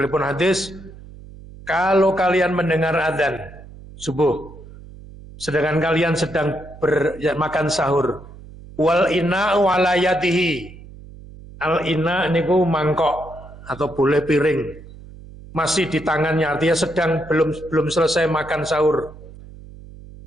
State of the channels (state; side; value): noise; right; hum, 18 dB below the sound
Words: hadis, kalau kalian mendengar adzan subuh, sedangkan kalian sedang makan sahur, wal ina walayatihi, al ina niku mangkok atau boleh piring, masih di tangannya, artinya sedang belum selesai makan sahur.